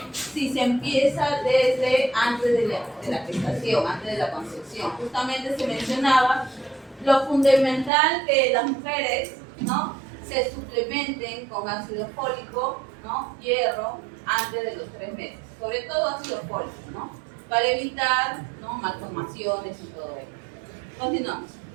si se empieza desde antes de la gestación, antes de la concepción. Justamente se mencionaba lo fundamental que las mujeres, ¿no?, se suplementen con ácido fólico, ¿no?, hierro, antes de los 3 meses. Sobre todo ácido fólico, ¿no?, para evitar, ¿no?, malformaciones y todo ello. Continuamos.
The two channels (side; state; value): left; drops out; at 7.9 s